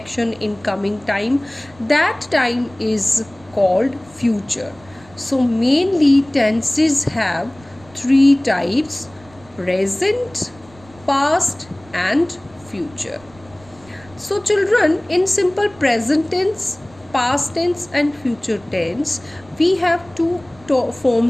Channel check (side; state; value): right; noise; rumble, 26 dB below the sound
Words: in coming time, that time is called future. So mainly tenses have three types: present, past and future. So children, in simple present tense, past tense and future tense, we have two